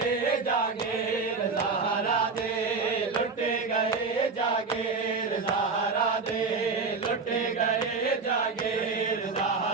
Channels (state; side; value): quieter; left; 4.5 dB